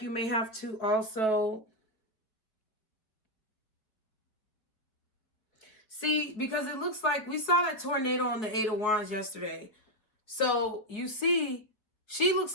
may have to also... See, because it looks like we saw that tornado on the Eight of Wands yesterday. So you see, she looks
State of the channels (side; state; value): right; late; 4.8 ms